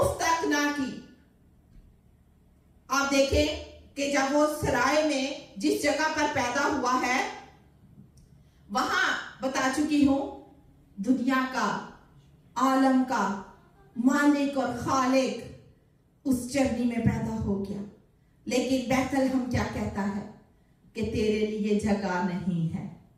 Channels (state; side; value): identical; both; correlation 1.00